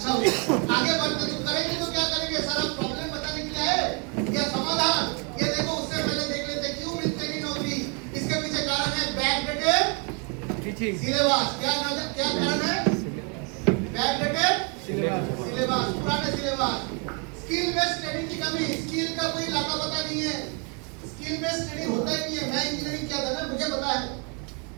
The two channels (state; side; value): quieter; left; 35.7 dB